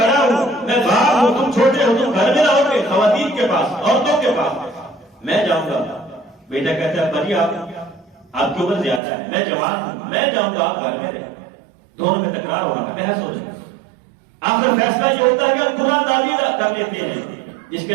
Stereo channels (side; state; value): left; drops out; at 9.0 s